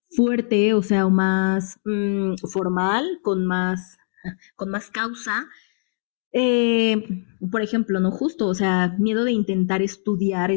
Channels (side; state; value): right; silent; digital silence